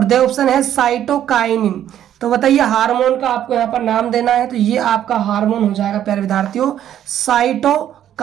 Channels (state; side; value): quieter; left; 10.9 dB